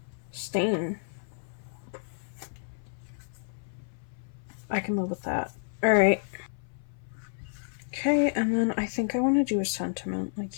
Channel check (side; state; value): right; silent; 57 dB below the other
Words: stain. I can live with that. Alright. Okay, and then I think I want to do a sentiment, like